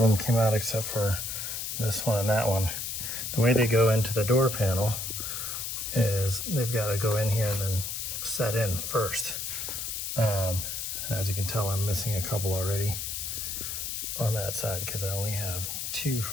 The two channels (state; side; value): noise; left; hiss, 4 dB below the sound